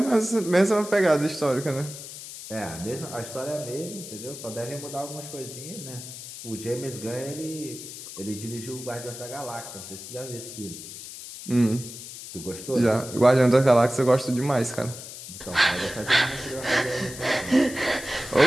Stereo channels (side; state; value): left; noise; hiss, 12 dB below the sound